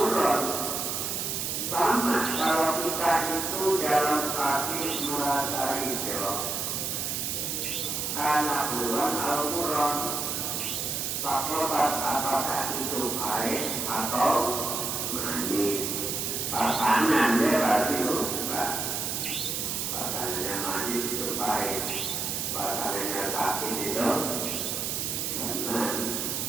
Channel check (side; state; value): right; noise; hiss, 1 dB below the sound